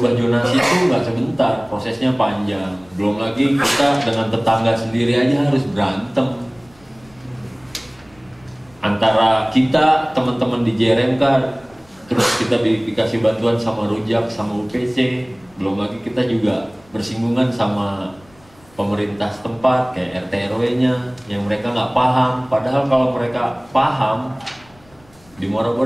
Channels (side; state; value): left; noise; rumble, 28 dB below the sound